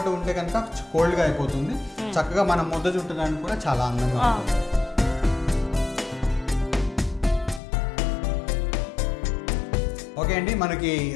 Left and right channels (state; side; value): drops out; right; at 7.6 s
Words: ఉంటే కనుక కోల్డ్గా అయిపోతుంది. చక్కగా మనం ముద్ద చుట్టడానికి కూడా చాలా అందంగా ఉంటుంది. ఓకే అండి, మనకి